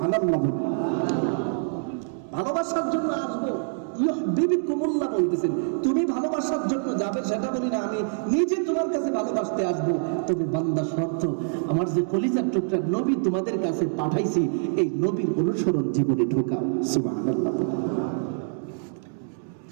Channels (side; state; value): left; silent; digital silence